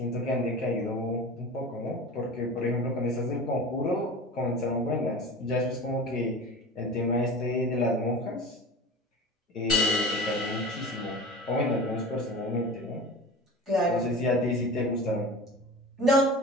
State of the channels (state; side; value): normal; both; correlation 0.35